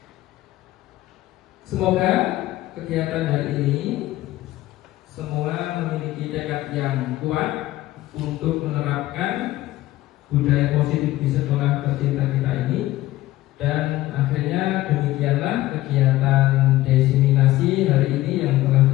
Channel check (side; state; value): right; quieter; 16.1 dB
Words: Semoga kegiatan hari ini semua memiliki tekad yang kuat untuk menerapkan budaya positif di sekolah tercinta kita ini. Dan akhirnya demikianlah kegiatan diseminasi hari ini yang telah